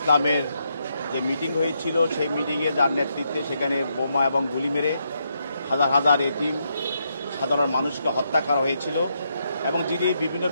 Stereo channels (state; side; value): inverted; both; correlation -0.79